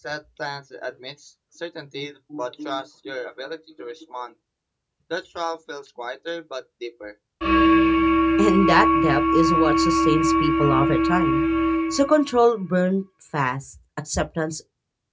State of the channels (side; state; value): both; identical; correlation 1.00